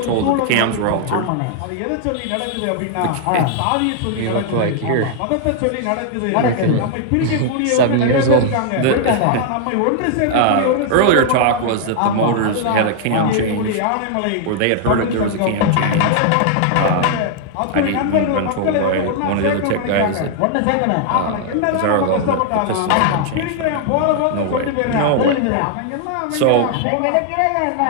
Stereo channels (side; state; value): both; different; correlation -0.01